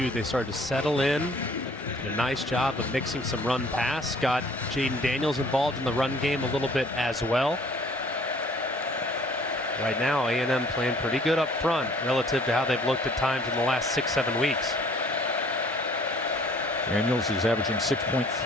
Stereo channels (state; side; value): normal; both; correlation 0.55